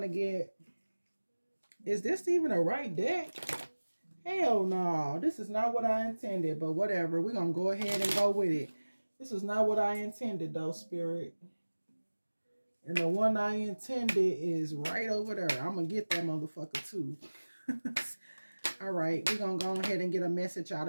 to get, is this even a right deck? Hell no, this is not what I intended, but whatever. We're going to go ahead and go with it. This is not what I intended though, Spirit. And the one I intended is right over there. I'm going to get that motherfucker too. All right, we're going to go ahead and get a message out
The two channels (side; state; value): both; inverted; correlation -1.00